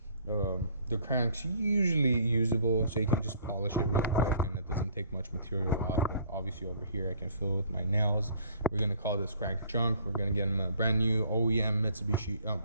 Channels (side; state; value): both; inverted; correlation -0.56